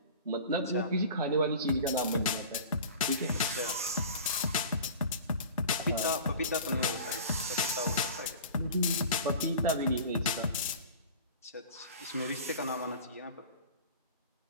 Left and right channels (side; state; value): both; inverted; correlation -0.39